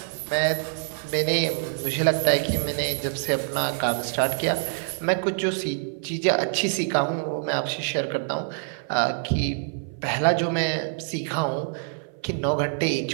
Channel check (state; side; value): silent; left; 57 dB below the other